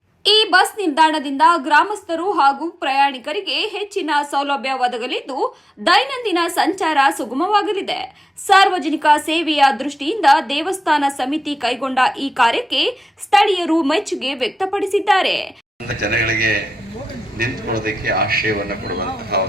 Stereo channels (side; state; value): both; normal; correlation 0.93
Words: ಈ ಬಸ್ ನಿಲ್ದಾಣದಿಂದ ಗ್ರಾಮಸ್ಥರು ಹಾಗೂ ಪ್ರಯಾಣಿಕರಿಗೆ ಹೆಚ್ಚಿನ ಸೌಲಭ್ಯ ಒದಗಲಿದ್ದು ದೈನಂದಿನ ಸಂಚಾರ ಸುಗಮವಾಗಲಿದೆ. ಸಾರ್ವಜನಿಕ ಸೇವೆಯ ದೃಷ್ಟಿಯಿಂದ ದೇವಸ್ಥಾನ ಸಮಿತಿ ಕೈಗೊಂಡ ಈ ಕಾರ್ಯಕ್ಕೆ ಸ್ಥಳೀಯರು ಮೆಚ್ಚುಗೆ ವ್ಯಕ್ತಪಡಿಸಿದ್ದಾರೆ. ಜನಗಳಿಗೆ ನಿಂತುಕೊಳ್ಳೋದಕ್ಕೆ ಆಶ್ರಯವನ್ನು ಕೊಡುವಂತಹ